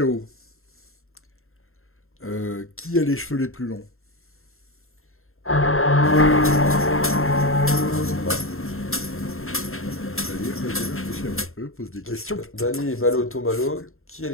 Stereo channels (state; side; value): late; right; 0.61 ms